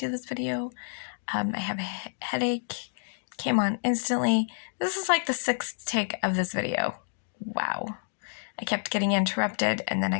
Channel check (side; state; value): right; silent; digital silence